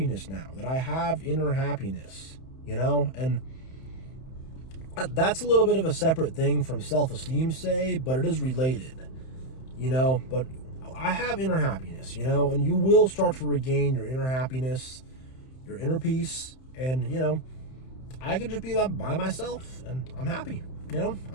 now, that I have inner happiness, and that's a little bit of a separate thing from self-esteem, say, but it is related, but I have inner happiness, and you will start to regain your inner happiness, your inner peace, and, I could just be by myself and I'm happy,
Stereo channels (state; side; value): late; right; 31 ms